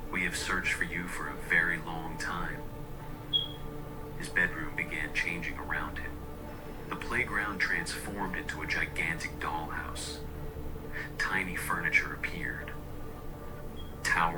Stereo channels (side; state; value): both; identical; correlation 1.00